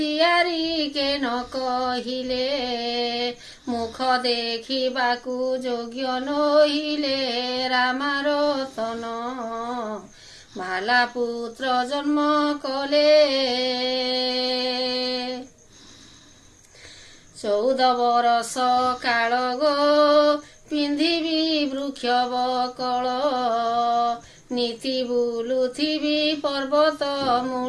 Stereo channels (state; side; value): identical; both; correlation 1.00